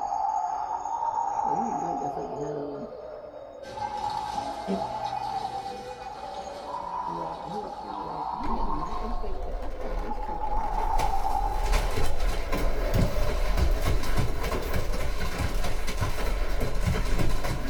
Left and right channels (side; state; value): both; identical; correlation 1.00